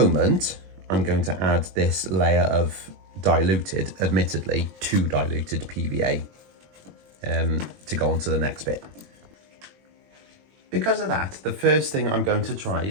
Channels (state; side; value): late; left; 21 ms